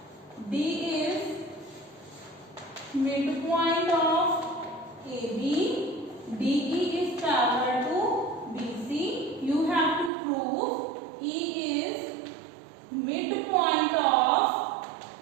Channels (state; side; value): drops out; left; at 10.1 s